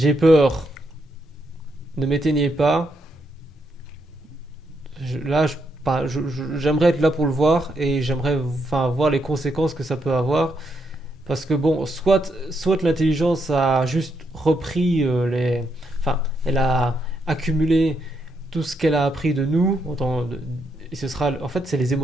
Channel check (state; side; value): normal; both; correlation 0.78